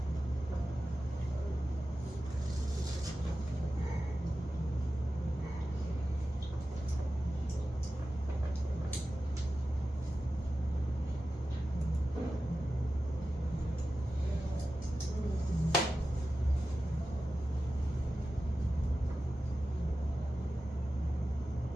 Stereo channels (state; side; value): normal; both; correlation 0.93